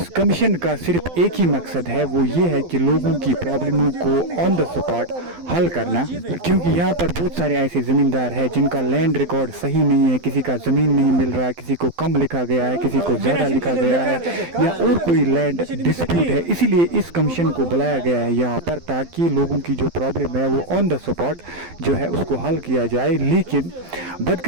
कमीशन का सिर्फ एक ही मकसद है, वो ये है कि लोगों की प्रॉब्लमों को ऑन द स्पॉट हल करना, क्योंकि यहाँ पर बहुत सारे ऐसे ज़मींदार हैं जिनका लैंड रिकॉर्ड सही नहीं है, किसी का ज़मीन नहीं मिल रहा है, किसी को कम लिखा गया है, किसी को ज़्यादा लिखा गया है, या और कोई लैंड डिस्प्यूट है। इसीलिए इस कमीशन को बुलाया गया है यहाँ पर, ताकि लोगों की जो प्रॉब्लम है वो ऑन द स्पॉट जो है उसको हल किया जाए। लेकिन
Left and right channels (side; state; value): left; late; 12 ms